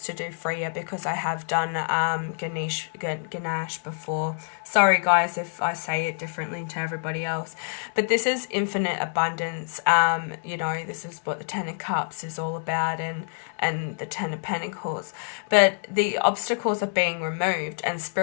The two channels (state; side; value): silent; right; 61 dB below the other